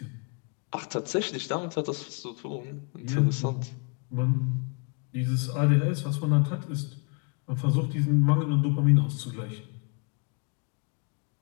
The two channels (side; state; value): right; quieter; 34.4 dB